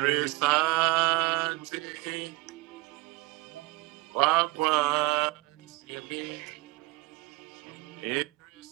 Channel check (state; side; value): quieter; left; 22.9 dB